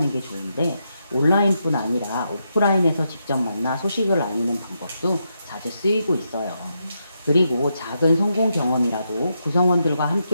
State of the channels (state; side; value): inverted; both; correlation -0.82